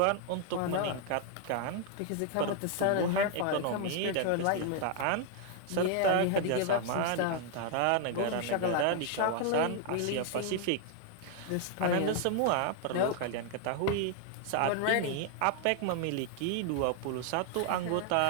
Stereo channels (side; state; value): both; different; correlation 0.00